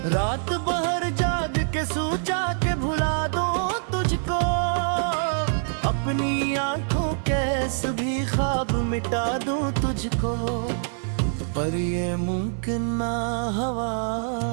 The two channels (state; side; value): silent; left; 62 dB below the other